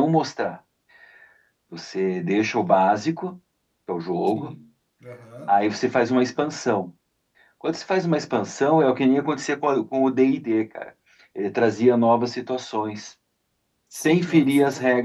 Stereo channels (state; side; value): identical; both; correlation 1.00